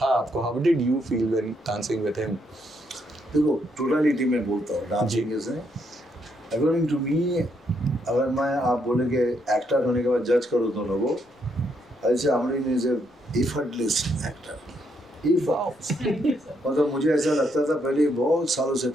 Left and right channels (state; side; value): normal; both; correlation 0.75